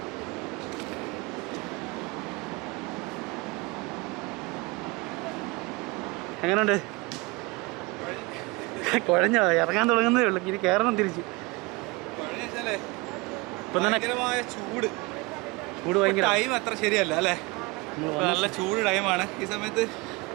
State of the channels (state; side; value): quieter; left; 25.2 dB